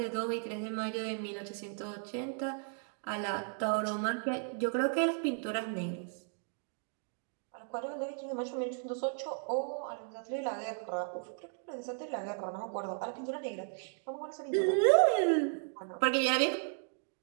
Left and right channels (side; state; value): left; silent; 54 dB below the other